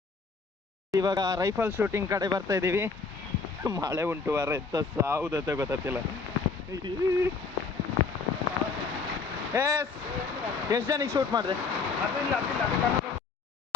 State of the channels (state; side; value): quieter; right; 4.7 dB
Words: ಇವಾಗ ರೈಫಲ್ ಶೂಟಿಂಗ್ ಕಡೆ ಬರ್ತಾ ಇದ್ದೀವಿ. ಮಳೆ ಉಂಟು ವಾರ, ಎತ್ತ ಸಾವುದತ್ತೆ ಗೊತ್ತಿಲ್ಲ. ಎಷ್ಟು ಜನಕ್ಕೆ ಶೂಟ್ ಮಾಡಿದೆ?